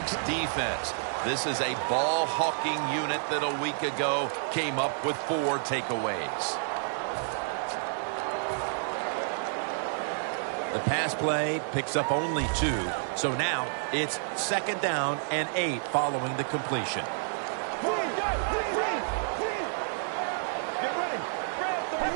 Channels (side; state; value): left; silent; digital silence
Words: defense. This is a ball-hawking unit that a week ago came up with 4 takeaways. The pass play picks up only 2. So now it's 2nd down and 8 following the completion.